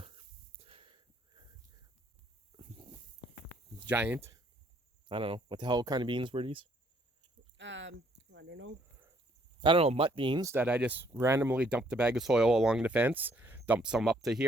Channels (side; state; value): both; normal; correlation 0.66